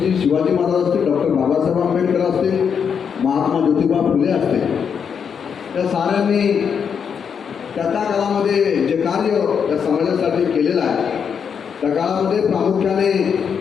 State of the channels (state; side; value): quieter; right; 7.0 dB